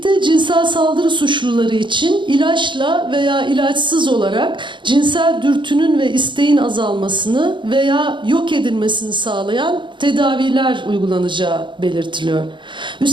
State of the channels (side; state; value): left; late; 0.23 ms